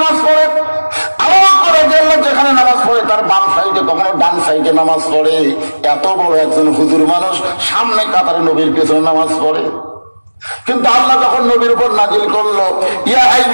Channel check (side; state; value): both; inverted; correlation -1.00